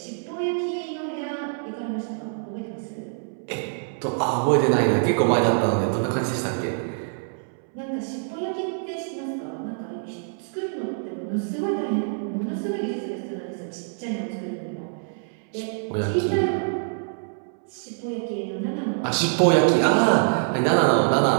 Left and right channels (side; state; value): left; silent; 62 dB below the other